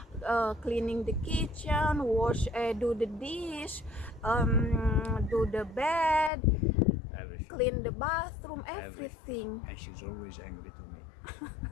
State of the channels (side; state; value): right; drops out; at 6.3 s